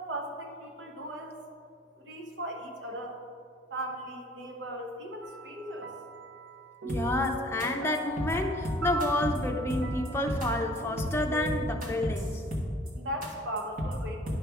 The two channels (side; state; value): both; normal; correlation 0.52